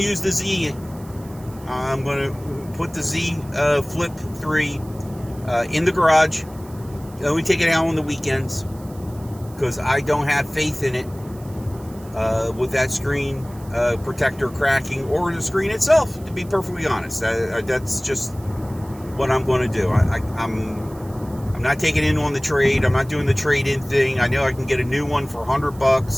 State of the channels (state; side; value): noise; right; hiss, 24 dB below the sound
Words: the Z. I'm going to put the Zflip 3 in the garage. Only take it out on the weekends, because I don't have faith in it with that screen protector cracking, or the screen itself, to be perfectly honest. That's just what I'm going to do. I'm not taking in on the trade. I'm not doing the trade-in thing. I know I can get a new one for